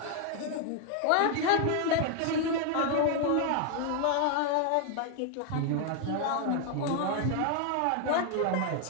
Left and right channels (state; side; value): different; both; correlation 0.00